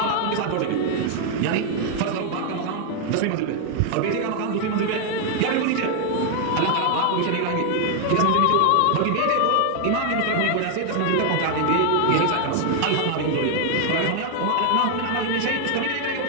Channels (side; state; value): both; different; correlation 0.00